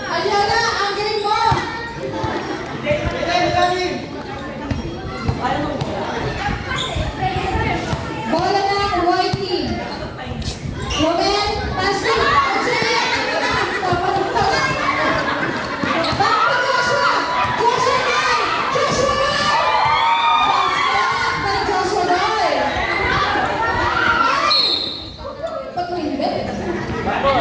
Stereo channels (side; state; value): both; identical; correlation 1.00